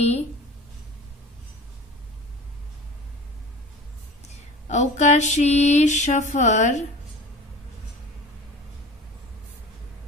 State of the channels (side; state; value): both; normal; correlation 0.39